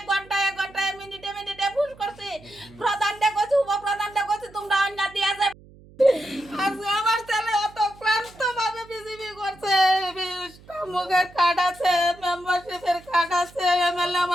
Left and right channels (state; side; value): noise; right; hum, 23 dB below the sound